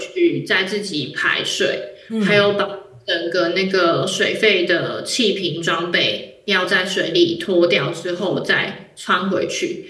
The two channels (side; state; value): both; identical; correlation 1.00